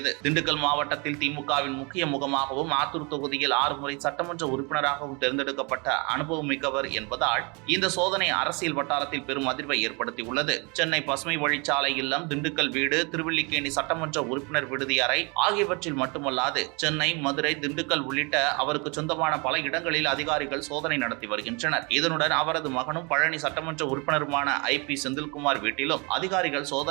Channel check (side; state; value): left; quieter; 30.6 dB